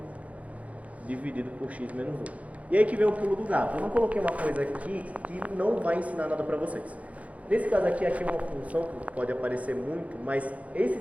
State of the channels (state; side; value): late; left; 0.067 ms